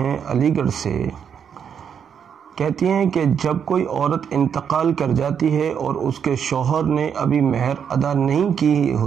علی گڑھ سے، کہتی ہیں کہ جب کوئی عورت انتقال کر جاتی ہے اور اس کے شوہر نے ابھی مہر ادا نہیں کی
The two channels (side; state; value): left; quieter; 7.7 dB